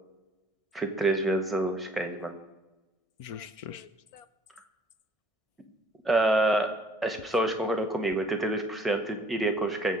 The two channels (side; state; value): right; late; 1.6 ms